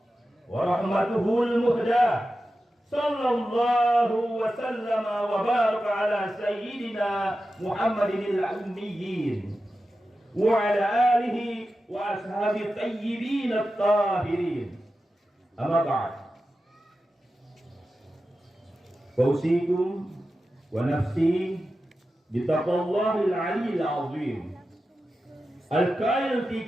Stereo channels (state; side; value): normal; both; correlation 0.92